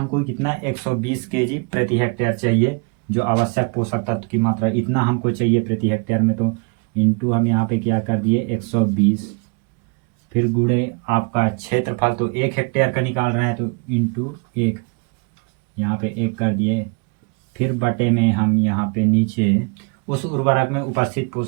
कितना 120 kg प्रति हेक्टेयर चाहिए, जो आवश्यक पोषक तत्व की मात्रा इतना हमको चाहिए प्रति हेक्टेयर में। तो इंटू हम यहाँ पे क्या कर दिए 120, फिर गुणे आपका क्षेत्रफल, तो 1 हेक्टेयर का निकाल रहे हैं तो इंटू 1, यहाँ पे 1 कर दिए, फिर बटे में हम यहाँ पे नीचे उस उर्वरक में उपस्थित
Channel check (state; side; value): quieter; left; 33.0 dB